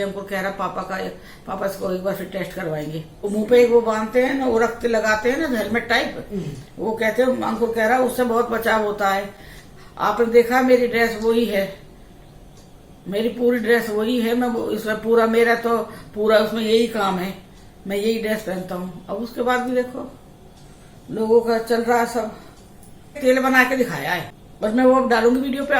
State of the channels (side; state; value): both; identical; correlation 1.00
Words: हमको कह रहा पापा इसको एक बार फिर टेस्ट करवाएंगे। वो मुंह पे एक वो बांधते हैं ना, वो रखते लगाते हैं ना हेलमेट टाइप, वो कहते हैं, अंकुर कह रहा उससे बहुत बचाव होता है। आपने देखा मेरी ड्रेस वही है, मेरी पूरी ड्रेस वही है, मैं इसमें पूरा मेरा तो पूरा उसमें यही काम है, मैं यही ड्रेस पहनता हूँ। अब उसके बाद भी देखो लोगों का चल रहा है, सब तेल बना के दिखाया है, बस मैं वो डालूंगी वीडियो पे,